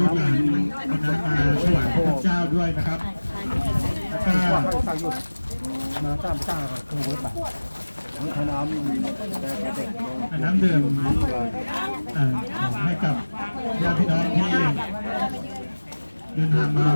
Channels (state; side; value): inverted; both; correlation -1.00